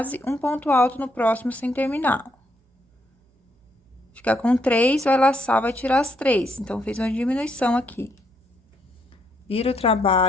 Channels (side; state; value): both; normal; correlation 0.74